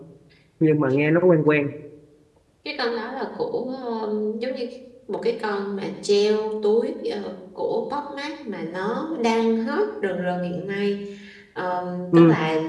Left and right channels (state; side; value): identical; both; correlation 1.00